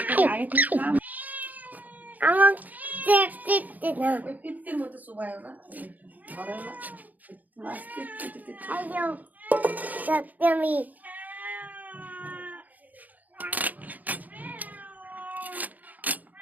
আগে থেকে খাম আমার দেখতে না ওই পিত্তির মতো সুবায় না ধরে না মাছ পিত্তি আইও সত্যমি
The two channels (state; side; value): late; left; 0.080 ms